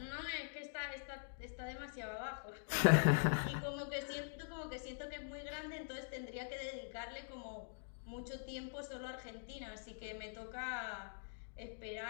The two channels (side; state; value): right; silent; digital silence